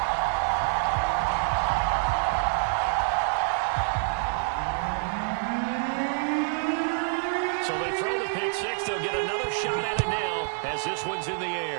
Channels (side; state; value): left; silent; digital silence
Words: So they throw the pick six. They'll get another shot at it now as this one's in the